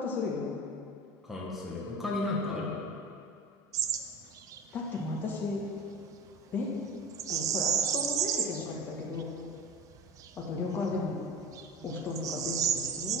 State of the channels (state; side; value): normal; both; correlation 0.32